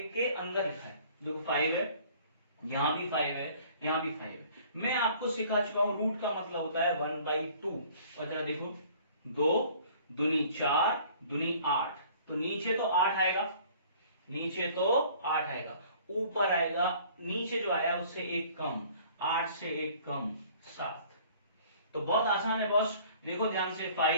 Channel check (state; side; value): inverted; both; correlation -0.53